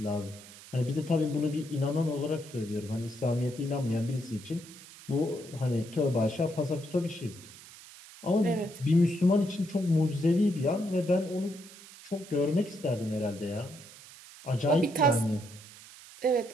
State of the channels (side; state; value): right; noise; hiss, 18 dB below the sound